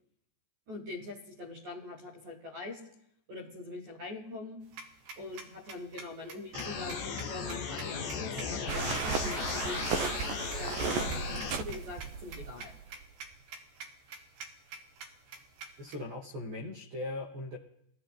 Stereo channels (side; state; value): left; late; 14 ms